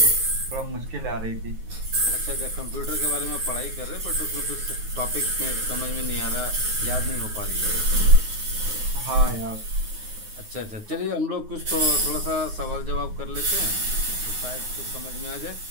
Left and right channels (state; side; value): late; left; 9.5 ms